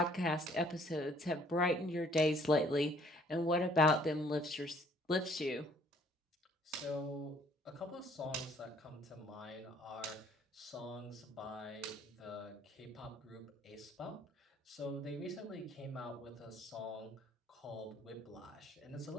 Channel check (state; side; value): normal; both; correlation 0.60